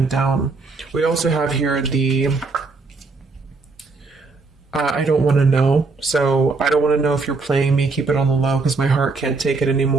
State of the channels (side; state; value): left; quieter; 4.0 dB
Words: down. We also have here the I don't want to know. So I don't want to know if you're playing me. Keep it on the low because my heart can't take it